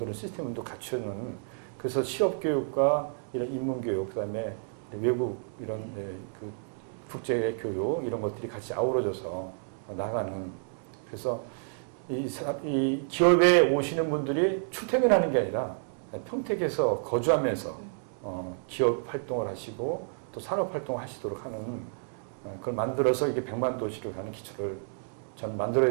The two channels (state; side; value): silent; left; digital silence